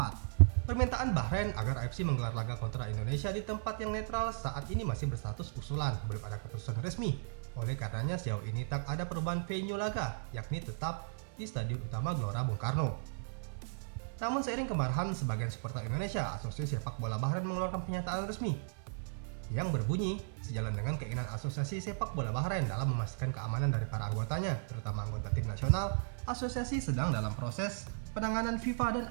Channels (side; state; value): left; silent; 54 dB below the other